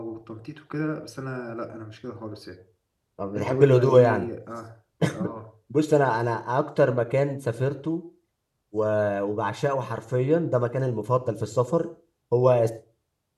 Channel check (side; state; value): both; identical; correlation 1.00